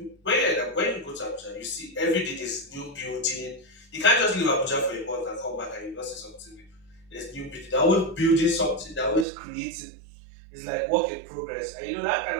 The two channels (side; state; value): left; drops out; at 9.2 s